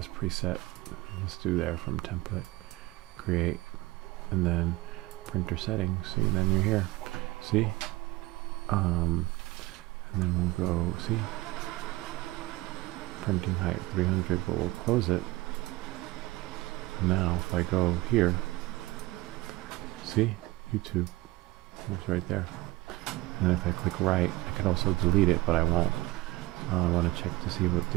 preset. Let's do there from template, create, and then printer settings. See, and then you're here. See? And then we'll go, see? Printing height 300, but we'll close it. Now, if I go here, see? YouTube. It's right there. And if I click right, I could also delete it, but I won't. I want to check to see what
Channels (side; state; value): left; quieter; 19.8 dB